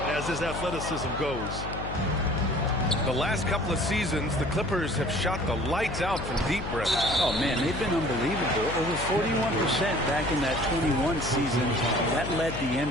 as his athleticism goes. The last couple of seasons, the Clippers have shot the lights out from deep, Brett. Oh, man, they've been unbelievable. Over 41% back in that 21 season. That led the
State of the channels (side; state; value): left; noise; hum, 8 dB below the sound